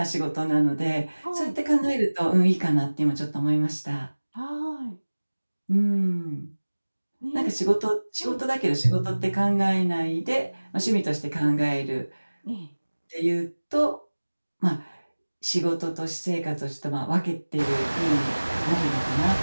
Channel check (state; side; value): inverted; both; correlation -1.00